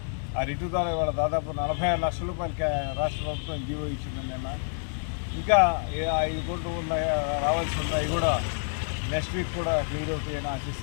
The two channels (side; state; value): right; silent; digital silence